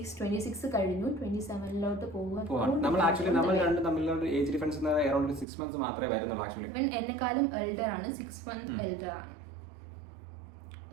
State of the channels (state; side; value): drops out; left; at 5.5 s